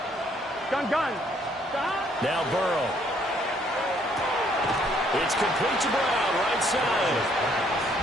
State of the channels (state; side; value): normal; both; correlation 0.66